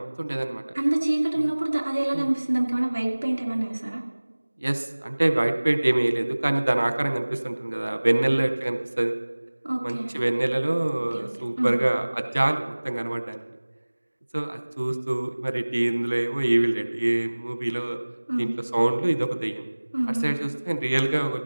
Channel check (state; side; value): inverted; both; correlation -1.00